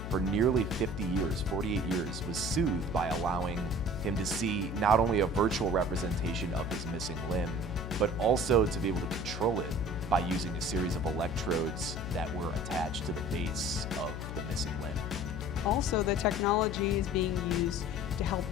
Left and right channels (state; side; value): noise; left; hum, 6 dB below the sound